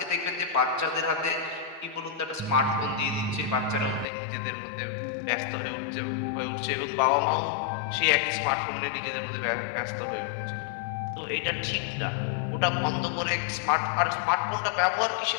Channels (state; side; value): drops out; right; at 4.0 s